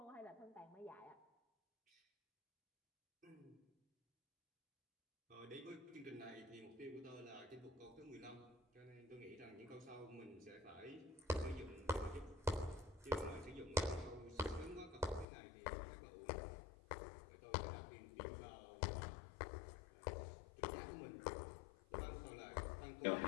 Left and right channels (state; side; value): drops out; right; at 15.2 s